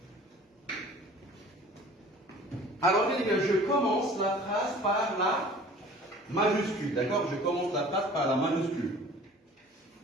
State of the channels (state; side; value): normal; both; correlation 0.47